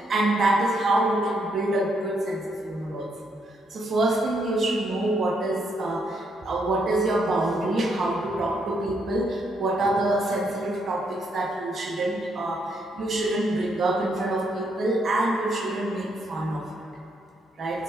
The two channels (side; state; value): both; normal; correlation 0.75